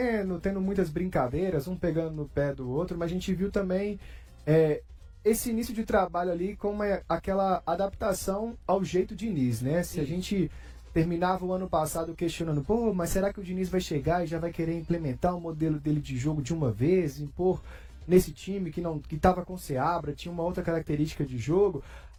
tendo muitas brincadeiras, um pegando no pé do outro, mas a gente viu também esse início de trabalho ali com aquela adaptação ao jeito Diniz, né? Se a gente terminava o ano passado questionando, mas será que o Diniz vai chegar e já vai querer implementar o modelo dele de jogo de uma vez, impor nesse time que estava com Seabra, tinha uma outra característica de jogo?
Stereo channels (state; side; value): identical; both; correlation 1.00